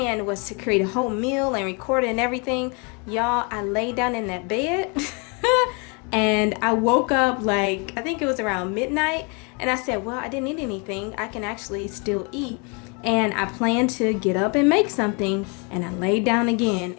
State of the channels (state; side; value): quieter; right; 33.5 dB